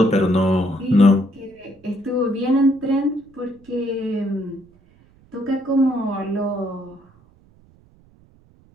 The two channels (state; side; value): noise; right; rumble, 29 dB below the sound